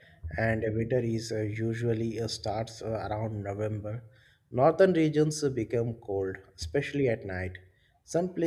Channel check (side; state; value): both; identical; correlation 1.00